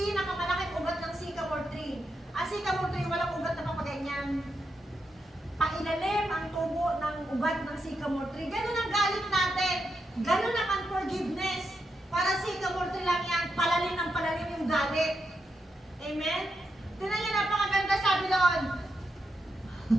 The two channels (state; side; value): normal; both; correlation 0.84